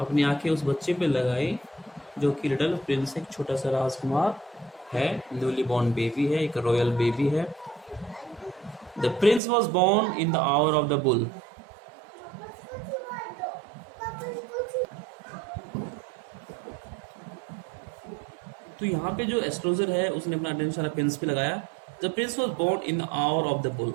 आंखें उस बच्चे पे लगाई जो कि लिटिल प्रिंस, एक छोटा सा राजकुमार है, न्यूली बॉर्न बेबी है, एक रॉयल बेबी है। The Prince was born in the hour of the bull. तो यहाँ पे जो एस्ट्रोलॉजर है उसने अपना अटेंशन प्रिंस पे लगाया। The Prince was born in the hour of the bull.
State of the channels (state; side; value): drops out; left; at 9.4 s